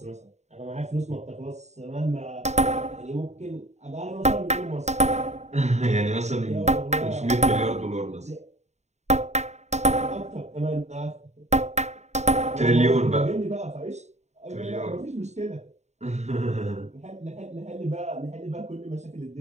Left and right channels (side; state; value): left; late; 0.33 ms